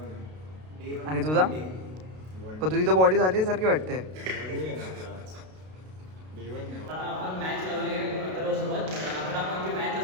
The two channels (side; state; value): left; late; 32 ms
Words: आणि तुझा? पण तुझी तर बॉडी झाली सारखी वाटते. आपण मॅच लावली आहे अथर्वसोबत. 11 पॉईंटची मॅच